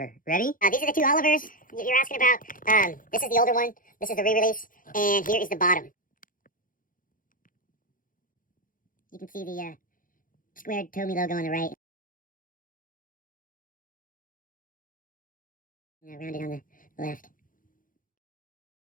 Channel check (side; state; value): right; late; 0.40 ms